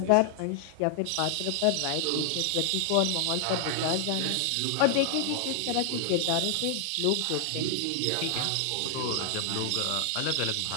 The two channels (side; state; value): both; different; correlation 0.00